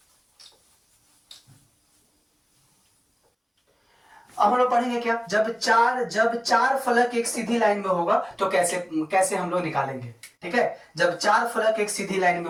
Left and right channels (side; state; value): both; identical; correlation 1.00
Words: अब हम लोग पढ़ेंगे क्या, जब चार फलक एक सीधी लाइन में होगा तो कैसे कैसे हम लोग निकालेंगे। ठीक है, जब चार फलक एक सीधी लाइन में